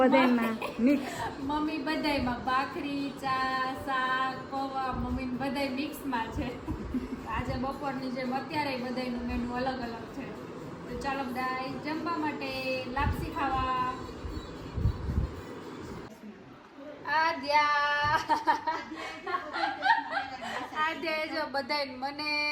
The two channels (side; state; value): both; identical; correlation 1.00